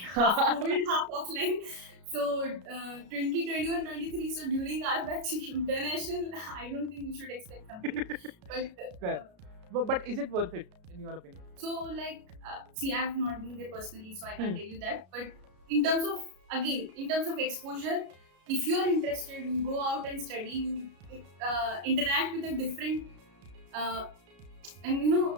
Half COVID, half offline. So 2021-23. So during our batch, international, I don't think you should expect something. But is it worth it in your opinion? So like, see, I have not been there personally, so I can't tell you that. But in terms of exposure, if you are interested, you go out and study, you interact with a different, and in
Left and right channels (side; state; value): left; late; 33 ms